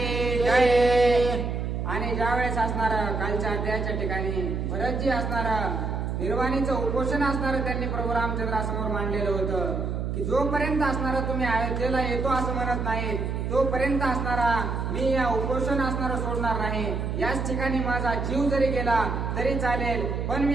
जय. आणि ज्यावेळेस असणार कालच्या अध्यायाच्या ठिकाणी भरतजी असणार निर्वाणीचं उपोषण असणार त्यांनी प्रभू रामचंद्रासमोर मांडलेलं होतं की जोपर्यंत असणारा तुम्ही अयोध्येला येतो असं म्हणत नाही तोपर्यंत असणारा मी या उपोषण असणारा सोडणार नाही. याच ठिकाणी माझा जीव जरी गेला तरी चालेल पण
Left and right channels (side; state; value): right; noise; hum, 2 dB below the sound